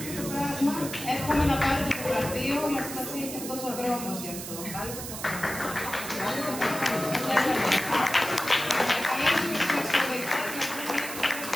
το πράγμα. Εύχομαι να πάρετε το γραφείο, μα σημασία έχει αυτός ο δρόμος γι' αυτό.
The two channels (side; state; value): right; noise; hiss, 8 dB below the sound